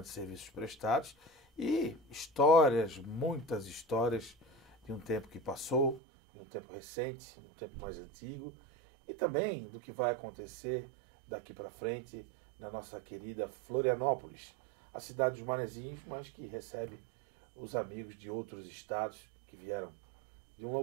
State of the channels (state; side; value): drops out; left; at 6.0 s